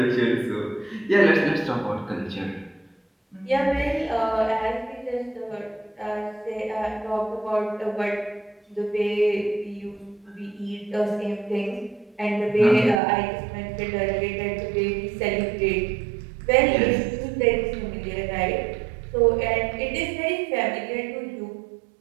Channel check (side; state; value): left; drops out; at 13.0 s